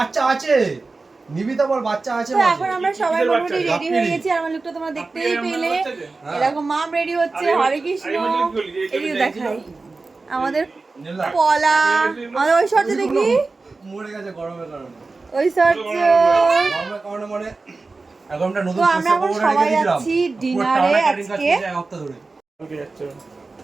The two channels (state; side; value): quieter; left; 3.8 dB